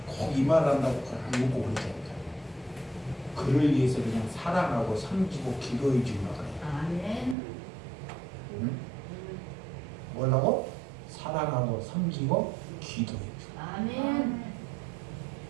꼭 이 말 한다고 안 먹고 그러자니까. 그를 위해서 그냥 사랑하고 섬기고 기도해 주려고 그래. 아멘. 응? 뭐라고? 사랑하고 섬기고 기도해 주. 아멘.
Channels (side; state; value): left; drops out; at 7.4 s